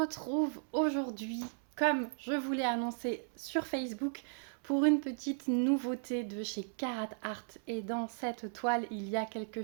aujourd'hui, comme je vous l'ai annoncé sur Facebook, pour une petite nouveauté de chez Karat Art. Et dans cette toile, il y a quelque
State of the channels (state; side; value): silent; left; 54 dB below the other